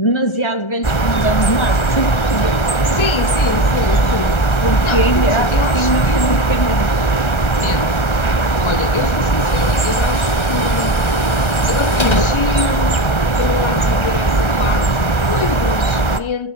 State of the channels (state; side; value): late; right; 1.3 ms